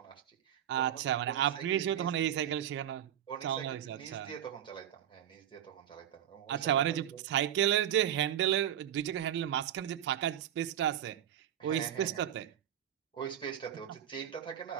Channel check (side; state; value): left; quieter; 10.5 dB